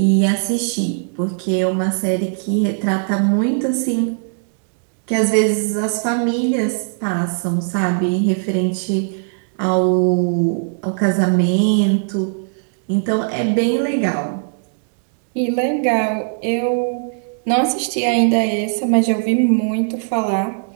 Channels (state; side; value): silent; left; digital silence